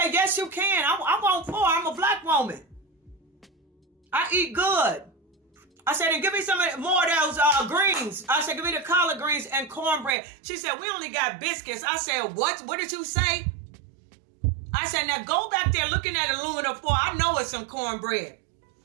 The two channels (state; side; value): drops out; left; at 10.2 s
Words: yes, you can. I want 4. I'm a black woman. I eat good. I said, and give me some more of those greens. I said, give me the collard greens and cornbread. She said, we only got biscuits. I said, what? What did you say? I said, now go back there looking at aluminum foil. I know it's some cornbread.